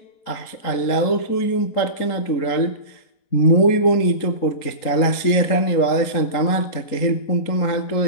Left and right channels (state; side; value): late; right; 3.9 ms